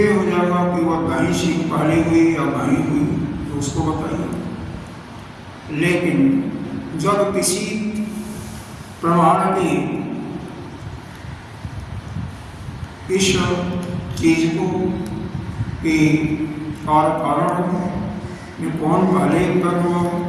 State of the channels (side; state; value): both; identical; correlation 1.00